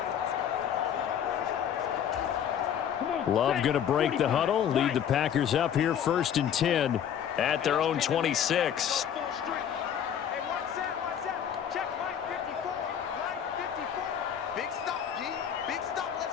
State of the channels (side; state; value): right; quieter; 9.0 dB